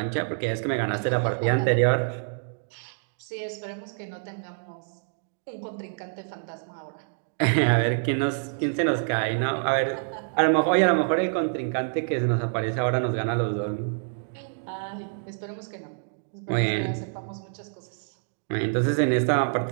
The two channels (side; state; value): left; silent; digital silence